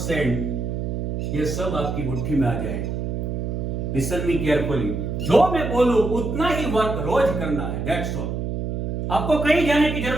ये सब आपकी मुट्ठी में आ जाएगा. Listen me carefully. जो मैं बोलूं उतना ही वर्क रोज करना है. That's all. आपको कहीं जाने की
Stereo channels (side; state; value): right; noise; hum, 3 dB below the sound